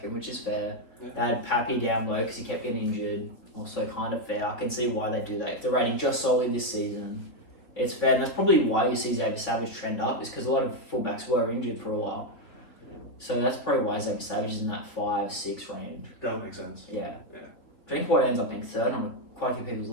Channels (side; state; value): right; late; 3.7 ms